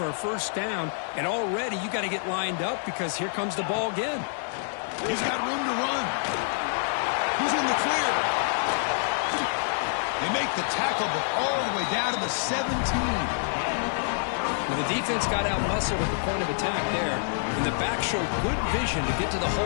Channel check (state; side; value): silent; right; 60 dB below the other